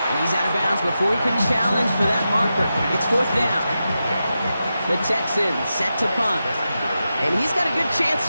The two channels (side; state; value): both; inverted; correlation -0.90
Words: And he's out of bounds before he can challenge for that marker. It's fourth down. The Texans set to punt. And he's got a good chance